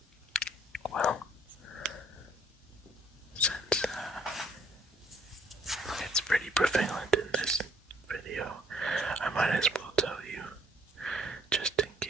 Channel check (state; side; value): normal; both; correlation 0.62